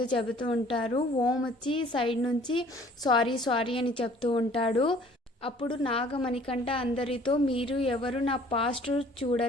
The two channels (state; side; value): normal; both; correlation 0.54